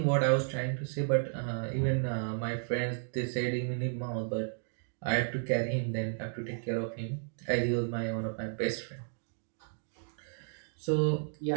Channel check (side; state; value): left; silent; digital silence